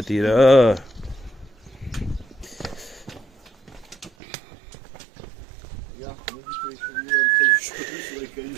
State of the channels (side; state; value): left; drops out; at 4.1 s